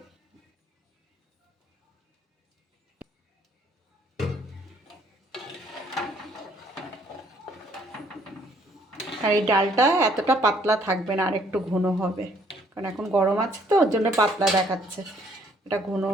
আর এই ডালটা এতটা পাতলা থাকবে না, আর একটু ঘন হবে, কারণ এখন গরম আছে তো, ওর জন্য পাতলা দেখাচ্ছে, এটা ঘন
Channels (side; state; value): both; normal; correlation 0.64